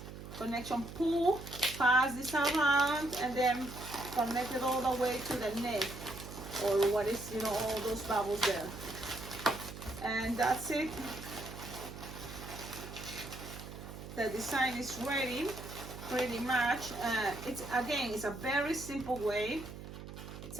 connection, pull, pass this around, and then connect it all the way to the neck, or what is, you know, all those bubbles there. And that's it. The design is ready pretty much. It's a very simple way. It's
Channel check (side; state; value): right; noise; hum, 12 dB below the sound